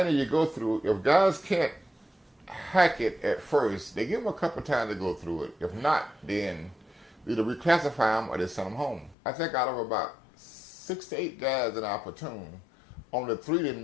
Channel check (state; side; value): drops out; right; at 9.2 s